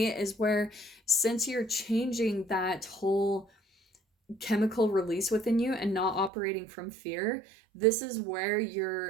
is where, since you're changing that whole chemical release within you and not operating from fear, this is where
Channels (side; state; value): left; drops out; at 6.3 s